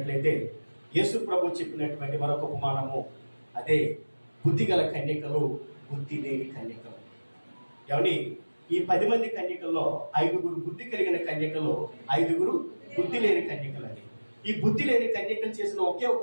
యేసు ప్రభు చెప్పినటువంటి మరొక ఉపమానము, అదే బుద్ధిగల కన్యకలు, బుద్ధి లేని కన్యకలు. ఏమండి, ఈ 10 మంది కన్యకల్లో 5గురు బుద్ధి కలిగిన కన్యకలు, 5గురు బుద్ధి లేని కన్యకలు. అని ఈ బుద్ధి లేని కన్యకలు చేసిన ఒకే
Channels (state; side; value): inverted; both; correlation -1.00